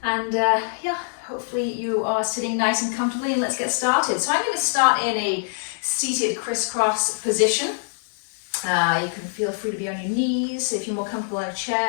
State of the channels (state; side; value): silent; right; digital silence